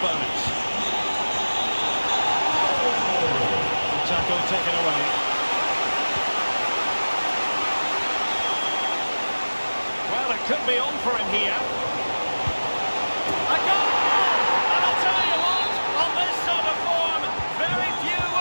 Tackle taken away. Could be on for him here. A goal! And I'll tell you what, on this sort of form, very few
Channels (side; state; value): both; inverted; correlation -1.00